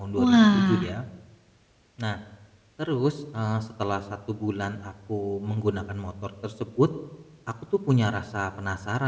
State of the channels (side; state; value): both; identical; correlation 1.00